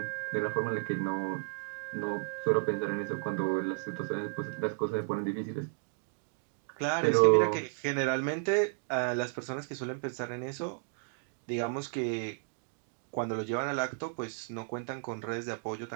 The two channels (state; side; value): silent; left; 56 dB below the other